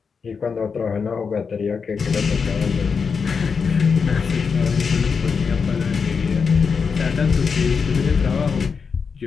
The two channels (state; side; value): quieter; right; 5.6 dB